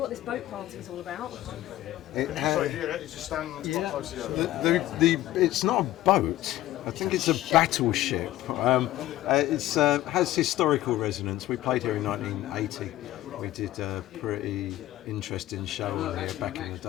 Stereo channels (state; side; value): quieter; right; 15.0 dB